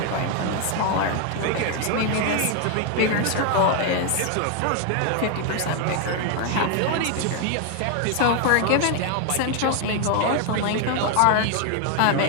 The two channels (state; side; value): different; both; correlation 0.01